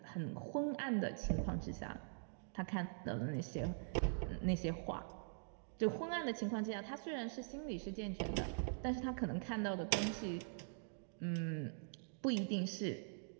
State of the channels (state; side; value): silent; left; digital silence